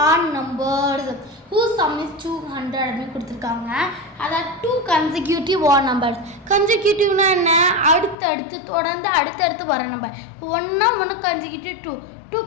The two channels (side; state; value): right; drops out; at 8.2 s